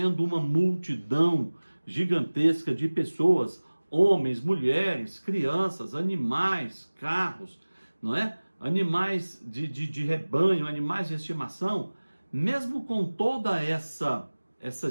uma multidão gigantesca de pessoas, homens, mulheres, crianças, animais, carros, não é? Animais de rebanho, animais de estimação, mesmo com toda essa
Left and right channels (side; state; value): both; inverted; correlation -1.00